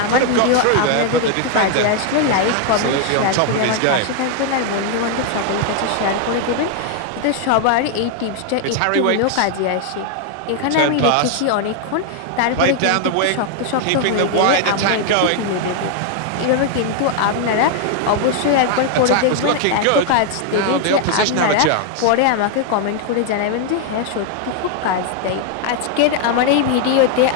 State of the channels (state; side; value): different; both; correlation 0.00